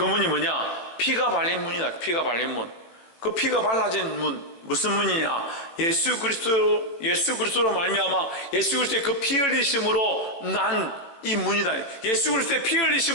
문이 뭐냐? 피가 발린 문이다. 피가 발린 문. 그 피가 발라진 문, 무슨 문이냐? 예수 그리스도로 말미암아 예수 그리스도의 그 피 흘리심으로 난 이 문이다. 예수 그리스도의 피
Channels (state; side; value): late; right; 18 ms